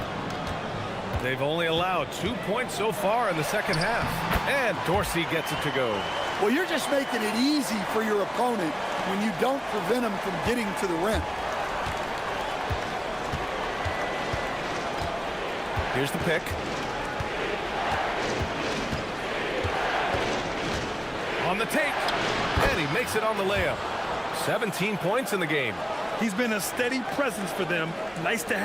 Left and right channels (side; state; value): both; identical; correlation 1.00